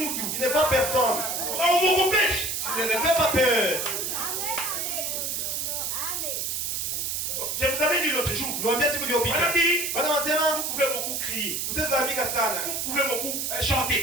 Il ne voit personne. Umukopeshe. Tu ne le fais pas peur. Je vous avais dit l'autre jour. Niwaambia siku iliyopita. Madame, Bwana wanasema vous pouvez beaucoup crier. utazamika sana. Vous pouvez beaucoup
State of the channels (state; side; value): noise; right; hiss, 1 dB below the sound